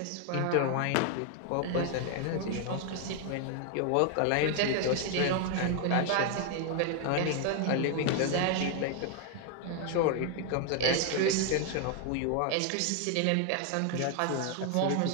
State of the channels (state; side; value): different; both; correlation 0.01